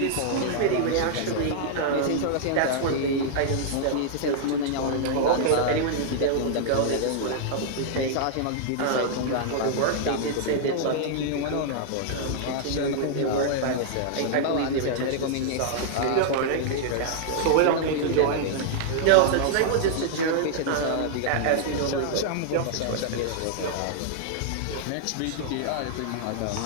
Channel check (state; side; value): different; both; correlation -0.01